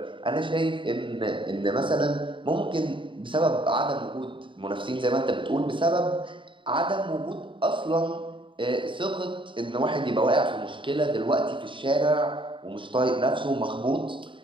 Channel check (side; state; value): left; late; 0.24 ms